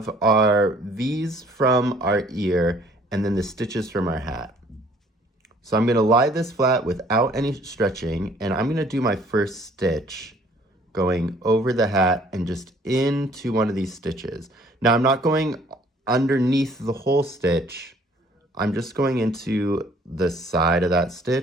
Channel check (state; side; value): normal; both; correlation 0.58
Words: our V's from our ear and then the stitches from our hat. So I'm gonna lie this flat without any stretching, and I'm gonna do my first stitch going over the hat and just into one of these stitches. Now I'm not going underneath the whole stitch, I'm just going into the side of that